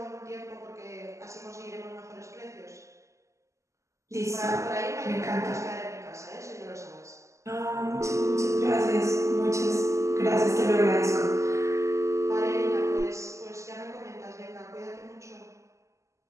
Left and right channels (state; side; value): late; left; 0.15 ms